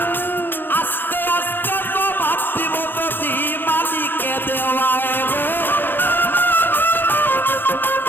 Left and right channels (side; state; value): right; late; 0.096 ms